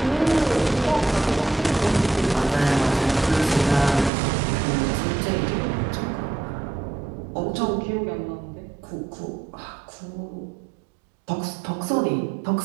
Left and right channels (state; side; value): drops out; left; at 4.1 s